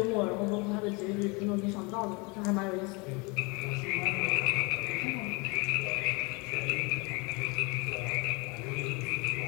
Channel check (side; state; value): right; quieter; 28.4 dB